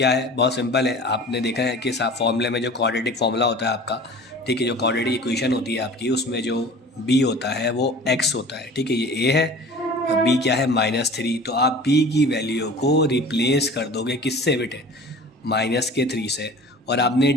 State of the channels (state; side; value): normal; both; correlation 0.42